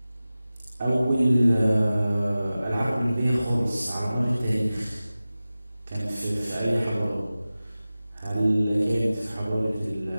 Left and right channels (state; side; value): inverted; both; correlation -0.96